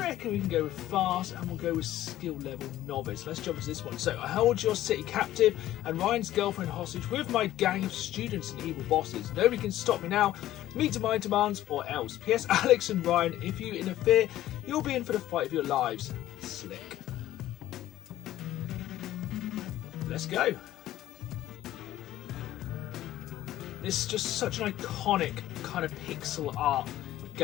we can go with fast, and we'll go with skill level novice. Let's jump into this one. So, I hold your city captive and Ryan's girlfriend hostage with my gang of students and evil bosses. Nobody can stop me now. Meet to my demands or else. P.S. Alex and Ryan, if you interfere, you'll be in for the fight of your lives. Slick. Let's go. This is just such an iconic kind of pixel art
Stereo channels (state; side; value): quieter; right; 13.9 dB